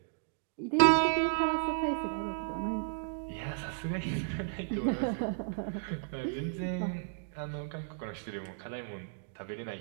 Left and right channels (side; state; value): left; silent; digital silence